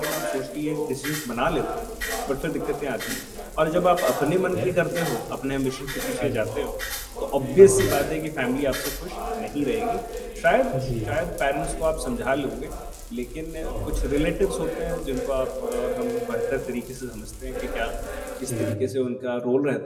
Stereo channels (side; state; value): both; identical; correlation 1.00